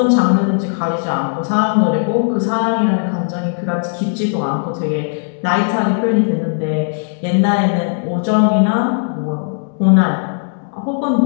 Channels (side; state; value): right; silent; digital silence